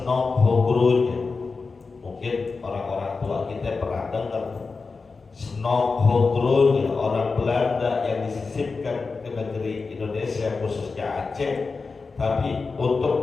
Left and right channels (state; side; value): quieter; right; 4.4 dB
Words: Hogronya. Mungkin orang-orang tua kita pernah dengar. Senok Hogronya, orang Belanda yang disisipkan ke negeri Indonesia, khususnya Aceh, tapi